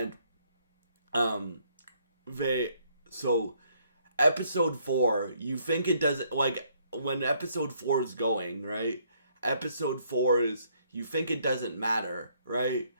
so episode 4, you think it doesn't, like when episode 4 is going, right? Episode 4 is, you think it doesn't matter, right?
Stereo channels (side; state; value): both; inverted; correlation -0.68